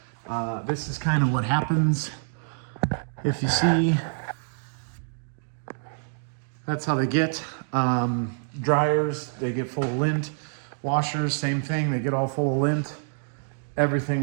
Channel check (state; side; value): silent; left; digital silence